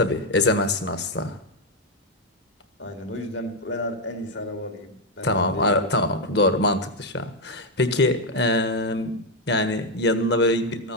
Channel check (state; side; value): normal; both; correlation 0.03